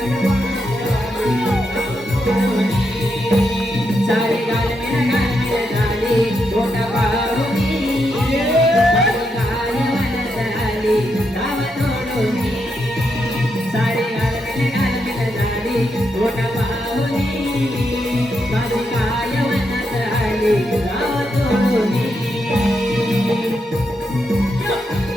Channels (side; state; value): both; normal; correlation 0.82